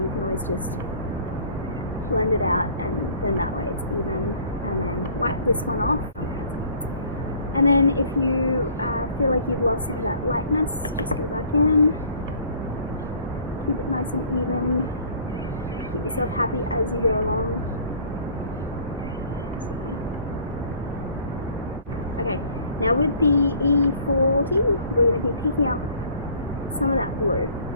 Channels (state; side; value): inverted; both; correlation -0.53